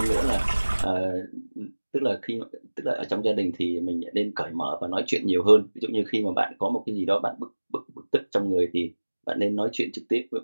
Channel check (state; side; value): inverted; both; correlation -1.00